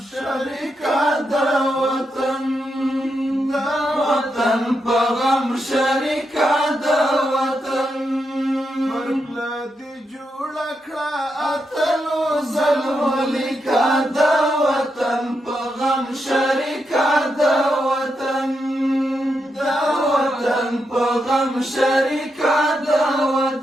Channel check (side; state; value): both; normal; correlation 0.84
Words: شریکه د وطن په غم شریکه د وطن پرپله دې جوړه کړه اتلو ظلمو لیکه د وطن په غم شریکه د وطن په غم شریکه د